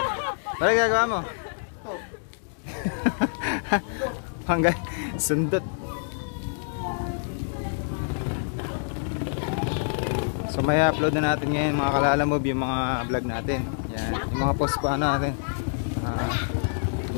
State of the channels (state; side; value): silent; right; digital silence